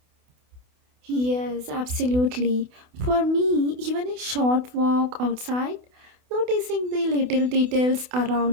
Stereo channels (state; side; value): late; left; 28 ms